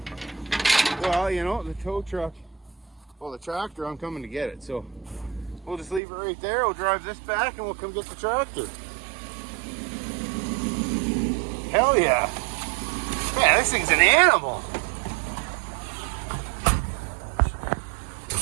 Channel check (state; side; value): drops out; left; at 6.0 s